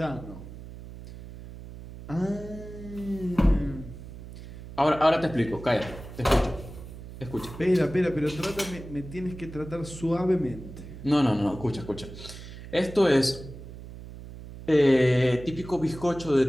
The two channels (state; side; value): noise; right; hum, 14 dB below the sound